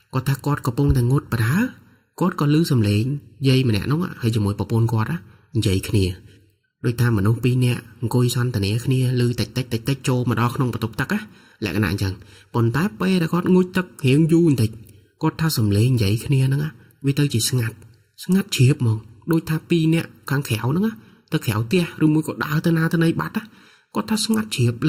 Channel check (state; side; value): identical; both; correlation 1.00